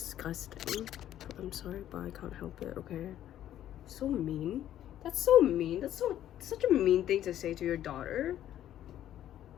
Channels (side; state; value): right; quieter; 11.7 dB